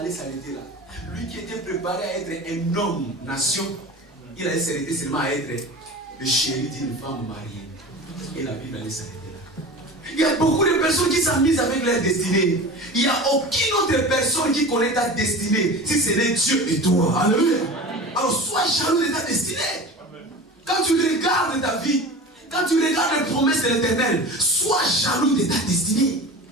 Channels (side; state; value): both; normal; correlation 0.34